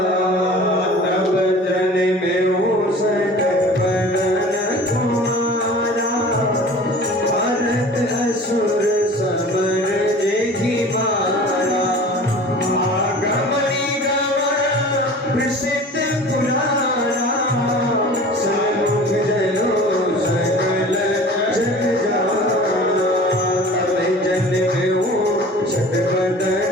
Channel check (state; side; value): normal; both; correlation 0.42